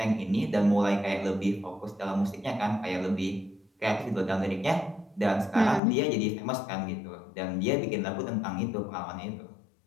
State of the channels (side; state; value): right; drops out; at 5.8 s